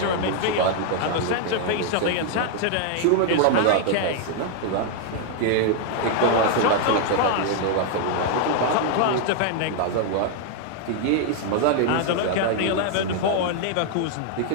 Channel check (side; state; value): both; different; correlation 0.00